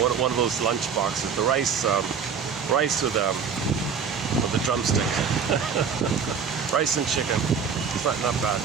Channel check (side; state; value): left; quieter; 6.4 dB